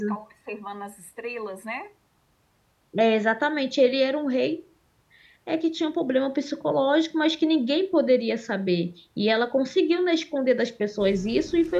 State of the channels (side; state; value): both; identical; correlation 1.00